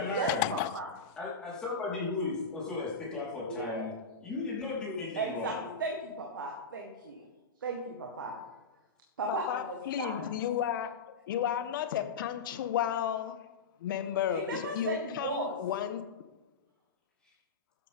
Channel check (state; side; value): quieter; right; 4.2 dB